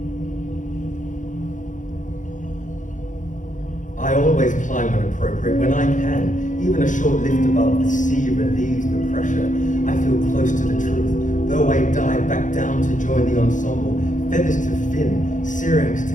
I always climb when appropriate, when I can. Even a short lift above the sea relieves the pressure. I feel close to the truth, though I dive back down to join the ensemble. Feathers to fin, syrinx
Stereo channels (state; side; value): late; right; 0.37 ms